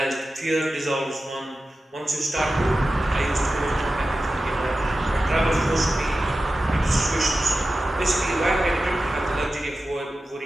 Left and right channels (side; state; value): both; normal; correlation 0.94